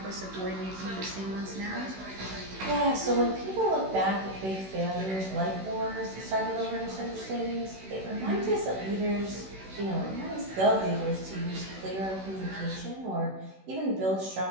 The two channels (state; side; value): late; left; 16 ms